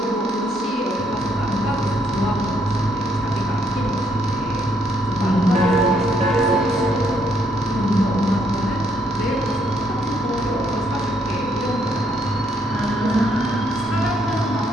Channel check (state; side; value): normal; both; correlation 0.71